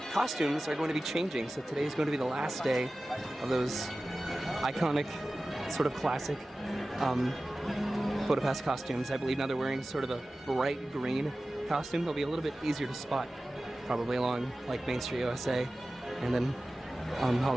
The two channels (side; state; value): both; normal; correlation 0.96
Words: costumes are going to be changing. So today is going to be the last day of those iconic, sort of classic PhotoPass costumes. I believe now they're wearing sort of a bright green costume. They'll be a little bit easier to spot probably along like Main Street USA and then